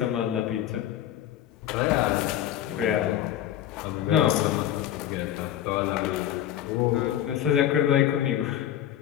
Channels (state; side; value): quieter; right; 11.6 dB